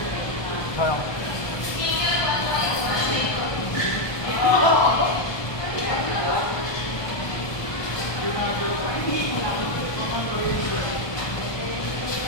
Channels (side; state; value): right; late; 1.2 ms